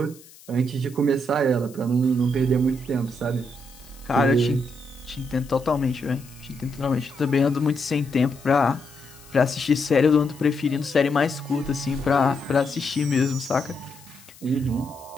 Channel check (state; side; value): noise; left; hiss, 23 dB below the sound